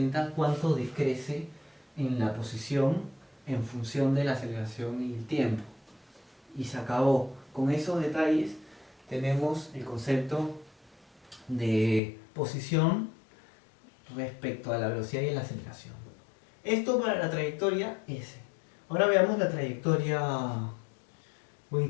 cuánto decrece en la posición en función de la aceleración y el tiempo. Y se acabó. Con esos detalles tenemos el concepto de posición respecto a la velocidad y la aceleración. Esto para la trayectoria S. Ahora veamos la trayectoria. Voy a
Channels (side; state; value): right; drops out; at 12.0 s